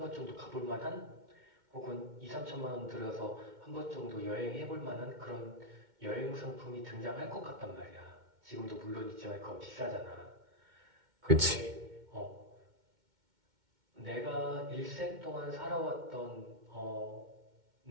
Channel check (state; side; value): late; left; 2.1 ms